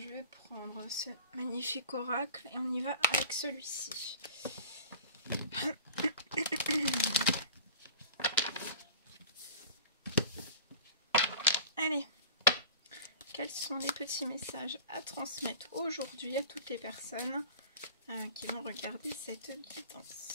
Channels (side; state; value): both; inverted; correlation -0.42